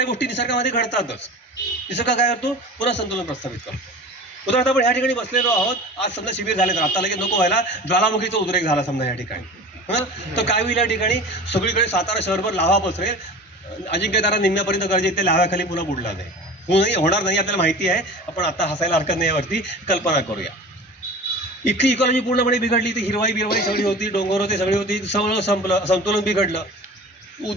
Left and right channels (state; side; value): normal; both; correlation 0.37